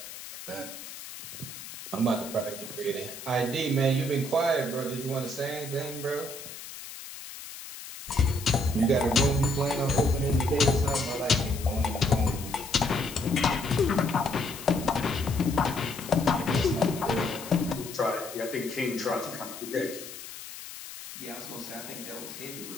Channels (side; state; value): left; noise; hiss, 12 dB below the sound